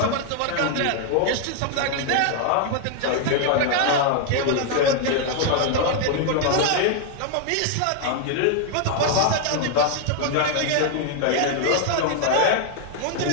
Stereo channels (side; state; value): both; different; correlation 0.00